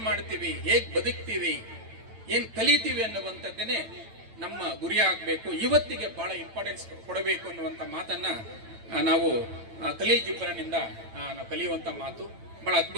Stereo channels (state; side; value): late; left; 9.0 ms